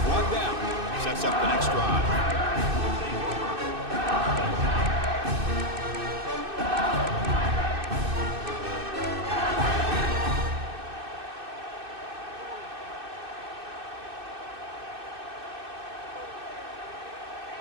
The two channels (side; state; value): left; late; 2.6 ms